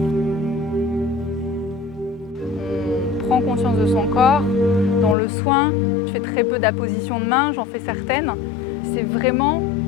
On prend conscience de son corps. Dans le soin, je fais très peu d'appositions de main, j'en fais certaines. C'est vraiment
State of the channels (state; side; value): drops out; right; at 5.2 s